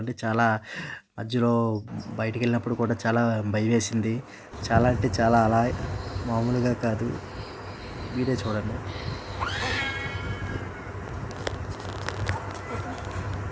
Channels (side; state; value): both; identical; correlation 1.00